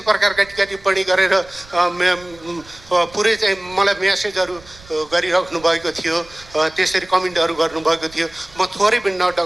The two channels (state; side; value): noise; right; rumble, 23 dB below the sound